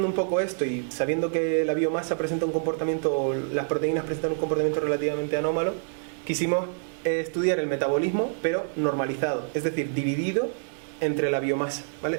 un poco esto y sabiendo que la biomasa presenta un comportamiento, o las proteínas presentan un comportamiento relativamente anómalo, quisimos estudiar el metabolismo, pero normalizado, es decir, dividido entre la biomasa, ¿vale?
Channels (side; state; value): left; silent; digital silence